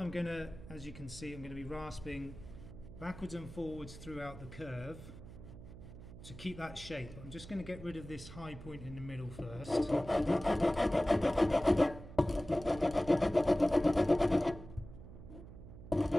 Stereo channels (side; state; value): right; noise; hum, 15 dB below the sound